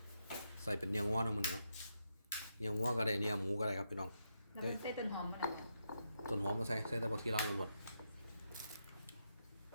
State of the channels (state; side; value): inverted; both; correlation -0.83